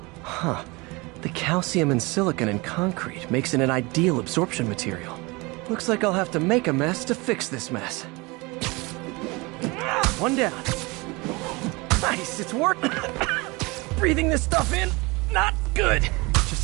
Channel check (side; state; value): left; quieter; 25.1 dB